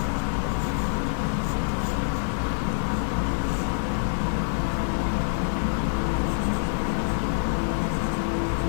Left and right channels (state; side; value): silent; right; digital silence